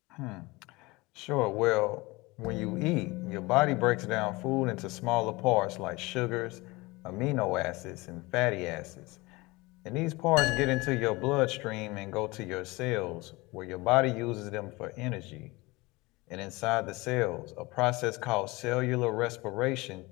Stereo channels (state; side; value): quieter; right; 22.8 dB